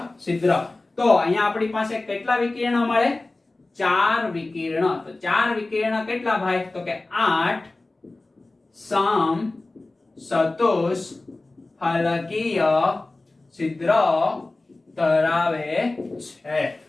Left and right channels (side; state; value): right; quieter; 3.1 dB